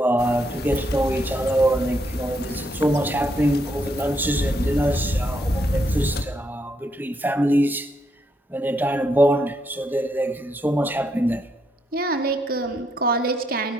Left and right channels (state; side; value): normal; both; correlation 0.77